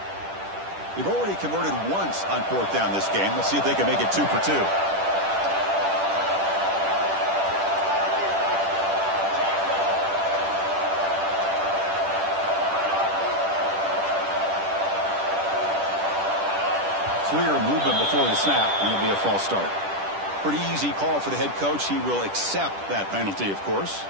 They've already converted once on 4th down this game. Let's see if they can make it 2 for 2. Clear movement before the snap, and it'll be a false start. Pretty easy call for the head coach. He will accept that penalty, of course.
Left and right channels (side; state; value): left; late; 10 ms